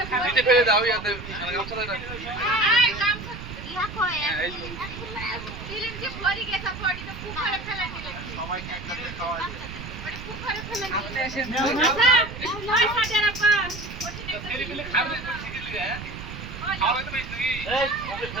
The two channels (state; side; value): noise; right; rumble, 11 dB below the sound